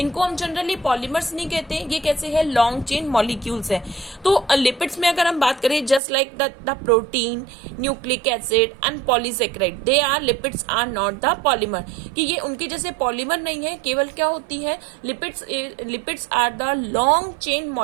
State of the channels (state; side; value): drops out; left; at 6.0 s